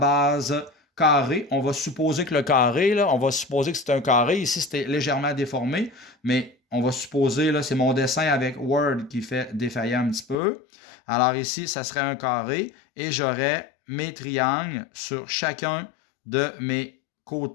carré. On va supposer que le carré, là, on va supposer que c'est un carré. Ici, c'était légèrement déformé, mais on va supposer, là, c'est mon dessin avec Word qui fait défailler un petit peu. Alors ici, ça serait un carré et j'aurais mes triangles sur chacun de mes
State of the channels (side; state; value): right; drops out; at 10.4 s